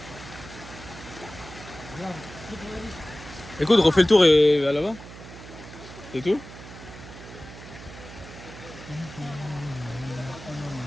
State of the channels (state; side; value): noise; right; hum, 15 dB below the sound